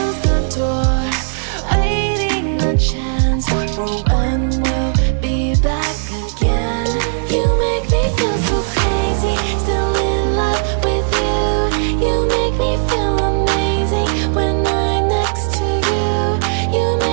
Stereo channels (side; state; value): left; silent; 68 dB below the other